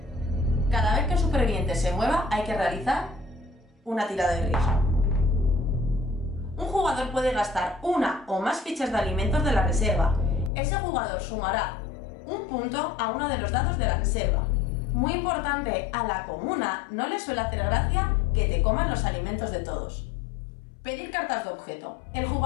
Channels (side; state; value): right; drops out; at 10.5 s